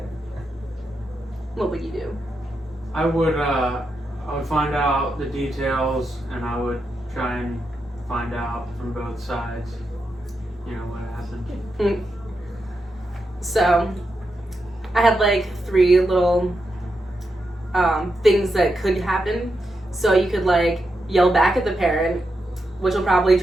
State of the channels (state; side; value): normal; both; correlation 0.86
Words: What would you do? I would find out the details, and I would try and find out from both sides, you know, what happened. So, I had like 3 little things that could happen. So you could like yell back at the parent, which will probably